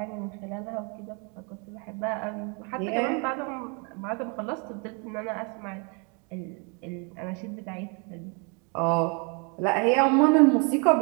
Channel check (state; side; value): quieter; left; 34.8 dB